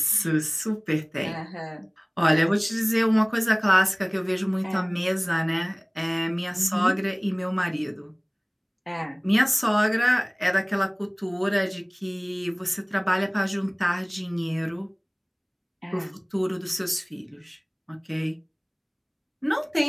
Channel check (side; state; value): both; identical; correlation 1.00